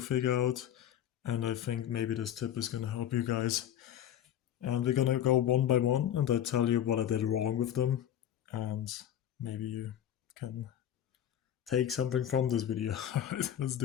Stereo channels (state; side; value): quieter; right; 10.5 dB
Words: out. And I think maybe this tip is gonna help you guys. And we're gonna go one by one and I tell you what I did wrong with them. And maybe you can take something from this video. Alright, let's